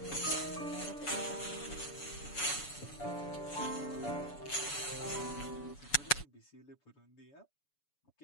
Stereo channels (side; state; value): right; late; 7.0 ms